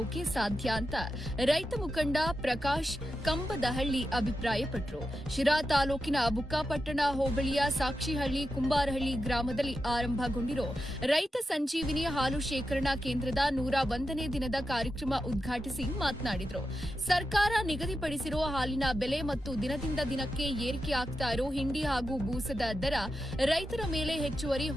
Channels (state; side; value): normal; both; correlation 0.89